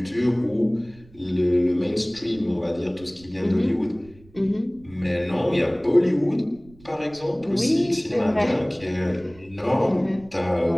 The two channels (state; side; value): noise; right; rumble, 25 dB below the sound